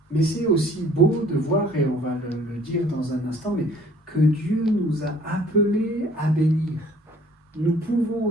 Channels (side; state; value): both; normal; correlation 0.55